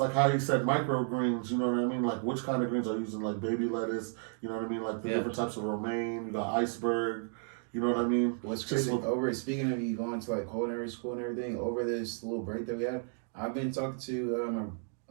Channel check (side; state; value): left; silent; 56 dB below the other